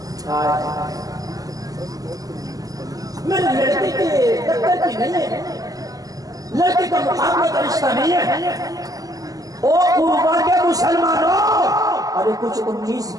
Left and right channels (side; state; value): left; late; 0.17 ms